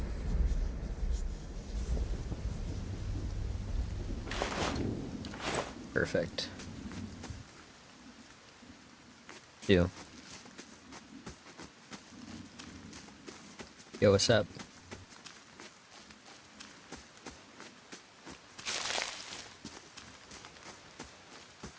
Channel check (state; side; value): identical; both; correlation 1.00